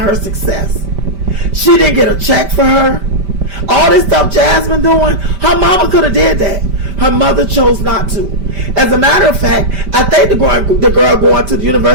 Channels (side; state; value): left; late; 5.1 ms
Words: her success. She didn't get a check for her. All this stuff Jasmine doing, her mama could have did that. Her mother chose not to. As a matter of fact, I think the girl going to the